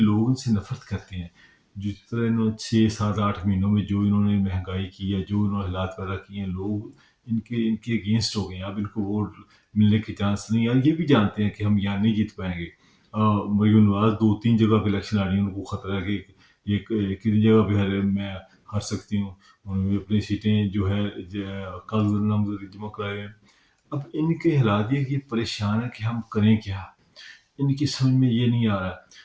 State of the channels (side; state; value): both; identical; correlation 1.00